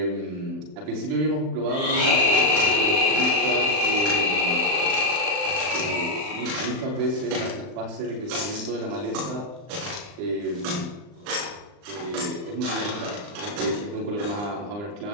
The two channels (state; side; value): late; left; 39 ms